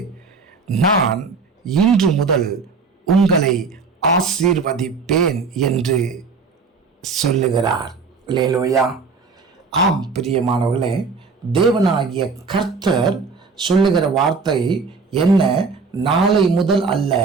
நான் இன்று முதல் உங்களை ஆசீர்வதிப்பேன் என்று சொல்லுகிறார். அல்லேலூயா. ஆம் பிரியமானவர்களே, தேவனாகிய கர்த்தர் சொல்லுகிற வார்த்தை என்ன? நாளை முதல் அல்ல,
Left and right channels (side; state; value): left; quieter; 4.7 dB